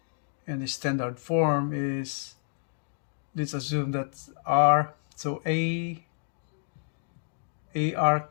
And the standard form is, let's assume that r, so ar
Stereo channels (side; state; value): right; silent; digital silence